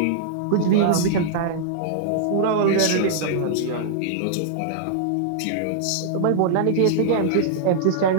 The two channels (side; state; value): both; different; correlation -0.01